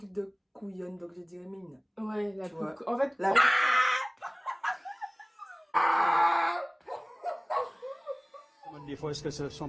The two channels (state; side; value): identical; both; correlation 1.00